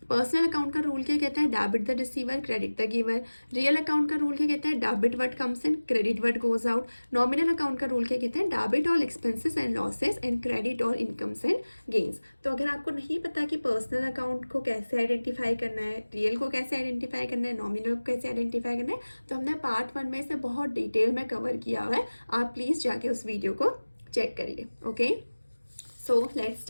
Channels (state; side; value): inverted; both; correlation -1.00